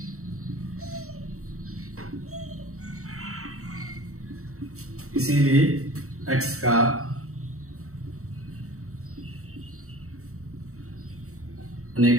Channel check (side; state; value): left; late; 0.64 ms